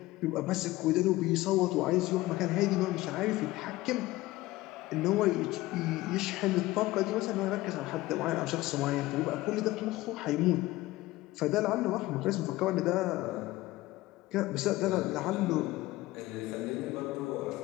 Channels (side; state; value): right; quieter; 18.2 dB